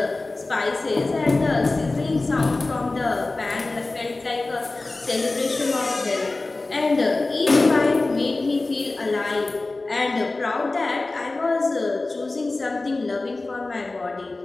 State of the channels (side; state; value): right; quieter; 3.2 dB